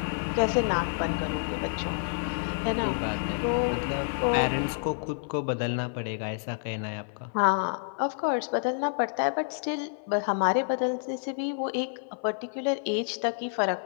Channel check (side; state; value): right; silent; 57 dB below the other